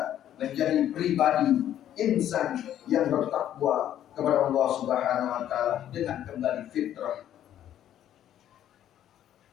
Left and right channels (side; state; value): right; quieter; 11.2 dB